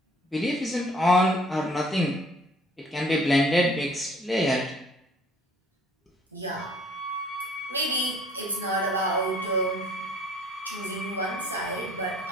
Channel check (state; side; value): normal; both; correlation 0.56